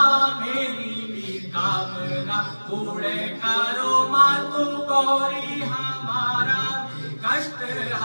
मेरी भी कामना पूरे करो माँ तो गौरी हमारा कष्ट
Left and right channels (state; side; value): inverted; both; correlation -1.00